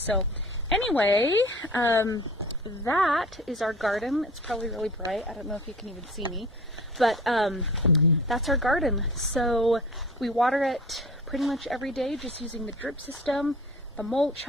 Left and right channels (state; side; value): normal; both; correlation 0.42